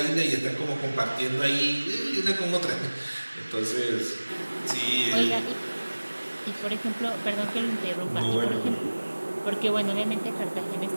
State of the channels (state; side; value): inverted; both; correlation -1.00